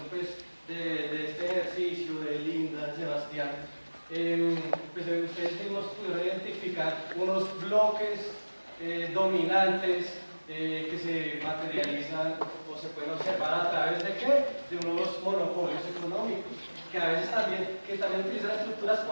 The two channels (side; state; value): both; inverted; correlation -1.00